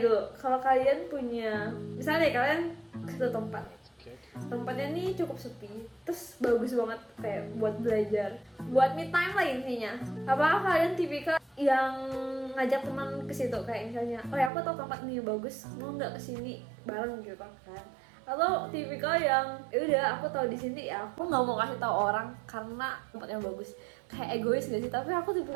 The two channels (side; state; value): left; drops out; at 14.5 s